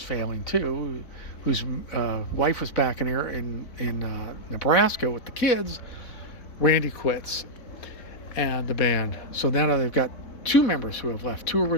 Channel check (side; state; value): right; late; 4.3 ms